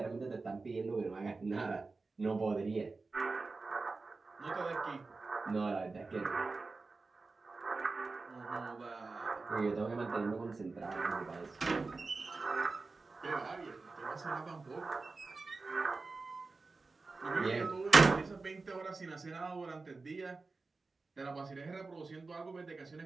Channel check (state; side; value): quieter; left; 3.9 dB